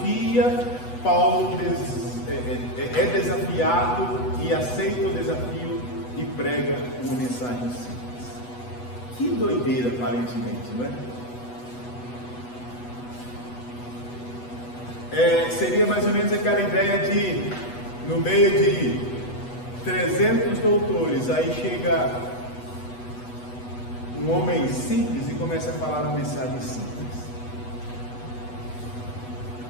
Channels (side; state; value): right; late; 8.1 ms